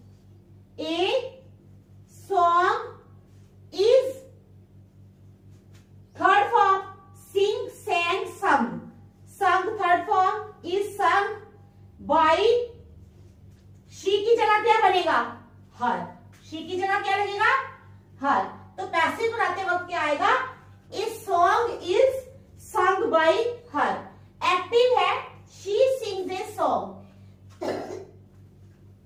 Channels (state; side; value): identical; both; correlation 1.00